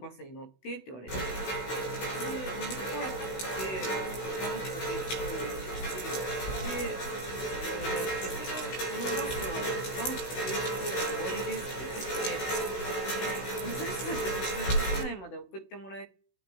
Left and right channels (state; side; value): late; right; 16 ms